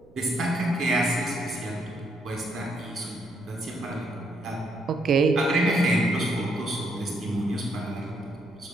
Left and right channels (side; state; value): right; noise; rumble, 28 dB below the sound